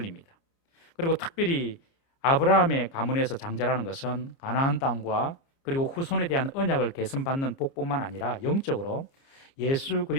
그리고 특별히 아브라함의 가문에서 장자라는 것은 가나안 땅과 그리고 후손에 대한 언약을 계승받는 복뿐만 아니라 영적으로 예수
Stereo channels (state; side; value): late; right; 29 ms